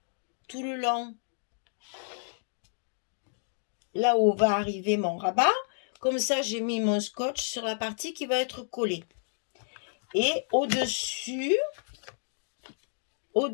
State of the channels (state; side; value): silent; right; digital silence